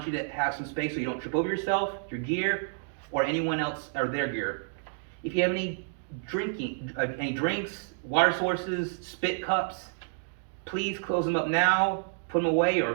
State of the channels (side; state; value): left; silent; digital silence